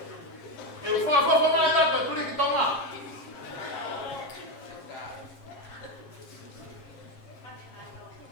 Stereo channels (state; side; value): late; right; 7.4 ms